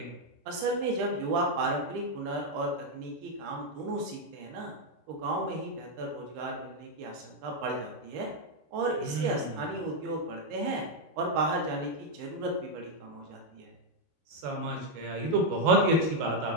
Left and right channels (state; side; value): late; left; 13 ms